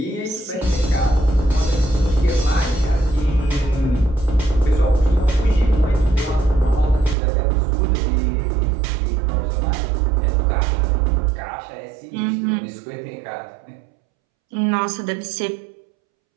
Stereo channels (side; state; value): left; drops out; at 7.2 s